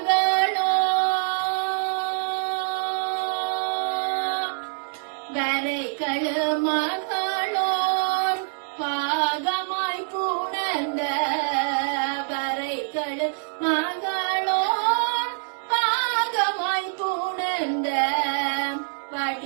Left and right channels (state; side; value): silent; left; digital silence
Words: வரைகளு மகளோர் பாகமாய் புணர்ந்த வரைகளு மகளோர் பாகமாய் புணர்ந்த